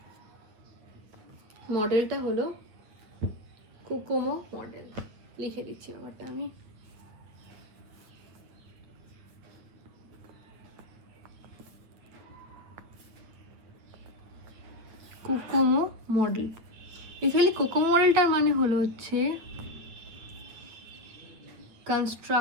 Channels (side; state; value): left; late; 8.8 ms